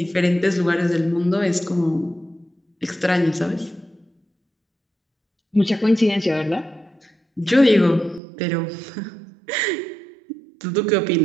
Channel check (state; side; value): drops out; left; at 8.2 s